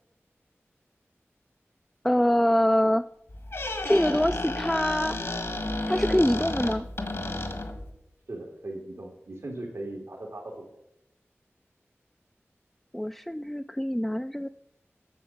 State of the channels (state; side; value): normal; both; correlation 0.95